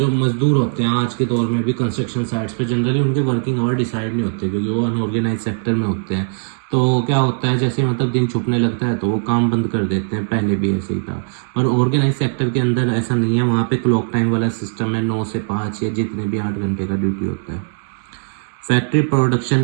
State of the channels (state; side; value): silent; left; 66 dB below the other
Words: मजदूर होते हैं आज के दौर में भी कंस्ट्रक्शन साइट्स पे, जनरली उनके वर्किंग आवर डिसाइड नहीं होते, क्योंकि वो अनऑर्गेनाइज सेक्टर में होते हैं। तो क्या होता है, जैसे मतलब दिन छुपने लगता है तो वो काम बंद कर देते हैं, पहले भी ऐसे ही था। पर ऑर्गेनाइज सेक्टर के अंदर ऐसा नहीं है, वहाँ पे क्लॉक टाइम वाला सिस्टम है, 9 से 5 या जितने भी 8 घंटे का ड्यूटी होता है। Factory